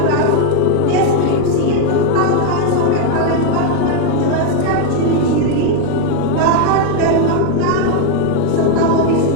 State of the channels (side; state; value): both; different; correlation 0.00